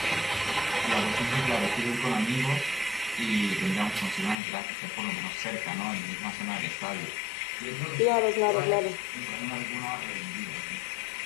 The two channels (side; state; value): right; drops out; at 4.4 s